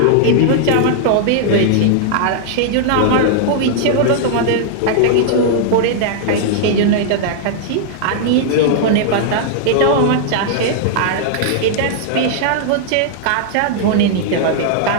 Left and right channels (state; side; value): different; both; correlation -0.01